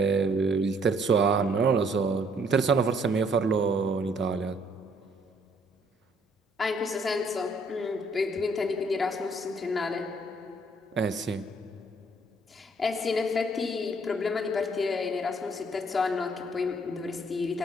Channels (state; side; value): normal; both; correlation 0.64